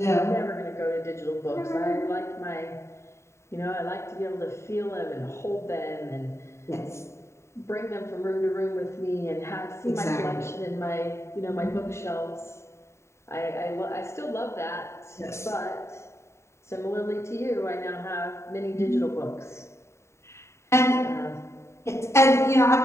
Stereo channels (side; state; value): right; late; 0.13 ms